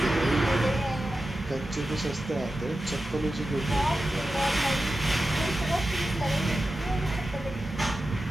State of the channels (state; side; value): normal; both; correlation 0.93